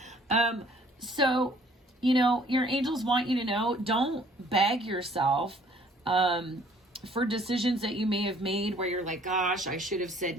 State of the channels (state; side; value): normal; both; correlation 0.58